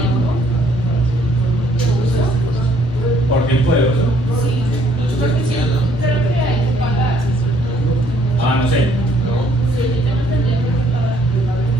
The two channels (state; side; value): normal; both; correlation 0.64